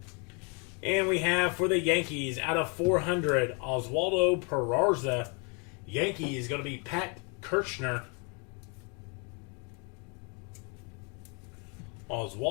And we have for the Yankees out of 400, Oswaldo Peraza. Yankees going to be Pat Kirchner.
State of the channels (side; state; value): right; quieter; 34.5 dB